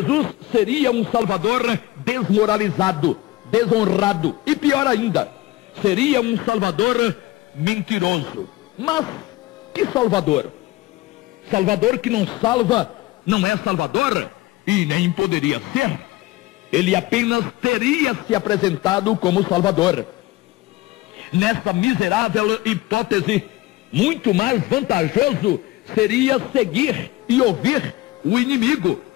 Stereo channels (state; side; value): quieter; right; 18.7 dB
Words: seria um Salvador desmoralizado, desonrado e pior ainda, seria um Salvador mentiroso. Mas que Salvador? Salvador que não salva não é Salvador e nem poderia ser. Ele apenas teria se apresentado como Salvador. Nessa miserável hipótese, muito mais vantajoso seria seguir e ouvir o inimigo,